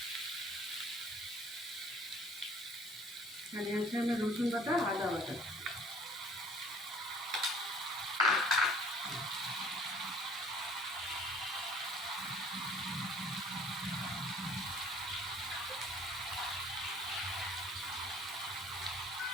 এখানে আছে আমি রসুন বাটা, আদা বাটা।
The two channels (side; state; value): both; normal; correlation 0.53